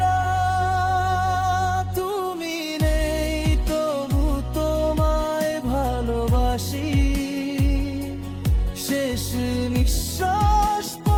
না। তুমি নেই তবু তোমায় ভালোবাসি, শেষ নিঃশ্বাস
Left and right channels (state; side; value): identical; both; correlation 1.00